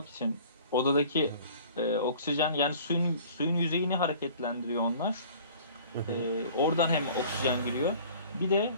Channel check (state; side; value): inverted; both; correlation -0.48